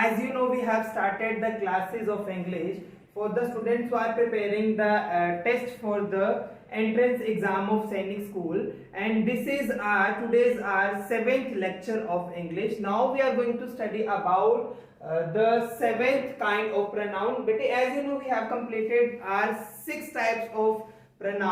you know, we have started the classes of English for the students who are preparing the test for the entrance exam of Sainik School, and this is today's our 7th lecture of English. Now we are going to study about the 7th kind of pronoun. But as you know, we have completed our 6 types of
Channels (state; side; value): identical; both; correlation 1.00